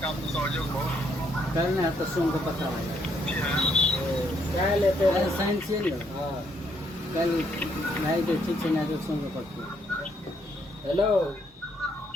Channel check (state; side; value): normal; both; correlation 0.72